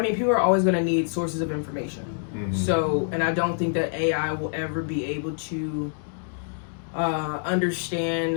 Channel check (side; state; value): right; silent; digital silence